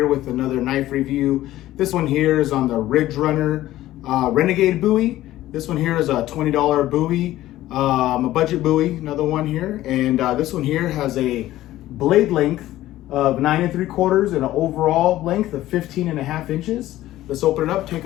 with another knife review. This one here is on the Ridge Runner Renegade Bowie. This one here is a $20 Bowie, a budget Bowie, another one here. And this one here has a blade length of 9 3/4 and an overall length of 15.5 inches. Let's open it up, take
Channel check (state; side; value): quieter; right; 14.9 dB